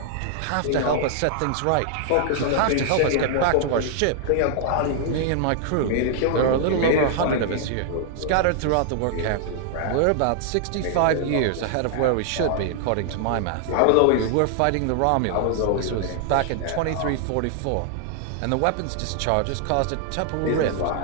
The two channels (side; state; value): both; different; correlation 0.00